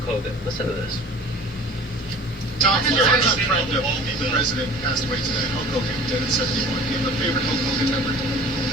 Hogan. Listen to this. Tom, your longtime friend of the president passed away today. Hulk Hogan, dead at 71. Do you have a favorite Hulk Hogan memory?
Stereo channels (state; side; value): normal; both; correlation 0.44